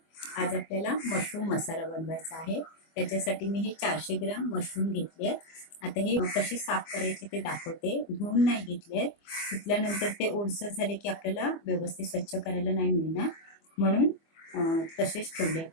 आज आपल्याला मशरूम मसाला बनवायचा आहे. त्याच्यासाठी मी हे 400 ग्राम मशरूम घेतले आहेत. आता हे कसे साफ करायचे ते दाखवते. धुवून नाही घेतले. धुतल्यानंतर ते ओलसर झाले की आपल्याला व्यवस्थित स्वच्छ करायला नाही मिळणार, म्हणून तसेच ठेवले.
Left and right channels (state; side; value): late; right; 24 ms